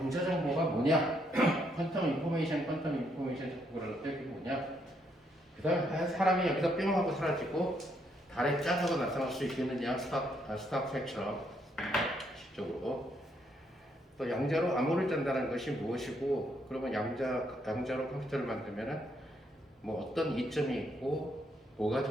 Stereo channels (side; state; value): both; normal; correlation 0.74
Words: 정보가 뭐냐? 퀀텀 인포메이션 자꾸 그러는데 그게 뭐냐? 그 다음에 사람이 여기서 뿅 하고 사라지고 달에 짠 하고 나타날 수 있겠느냐? 스타트랙처럼 실적으로 또 양자로 암호를 짠다는 것이 무엇이고 그러면 양자로 컴퓨터를 만들면은 뭐 어떤 이점이 있고 뭐가